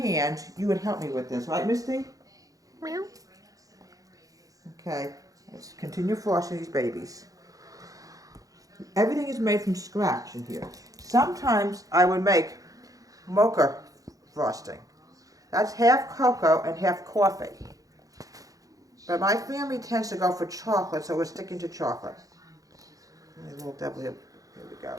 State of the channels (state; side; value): late; left; 0.17 ms